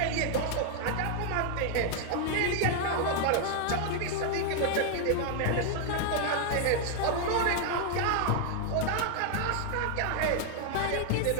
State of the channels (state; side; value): different; both; correlation 0.00